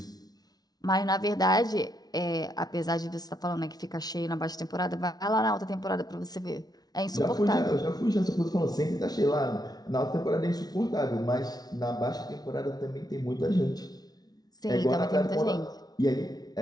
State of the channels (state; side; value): late; right; 0.19 ms